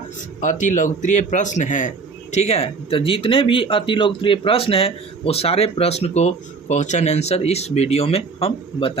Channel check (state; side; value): quieter; left; 4.6 dB